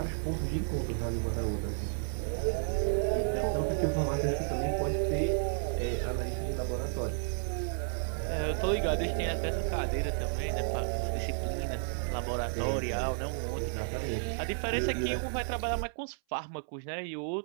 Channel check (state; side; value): silent; left; 56 dB below the other